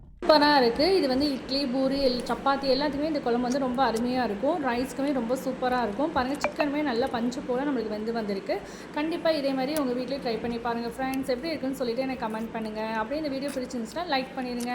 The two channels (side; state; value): both; identical; correlation 1.00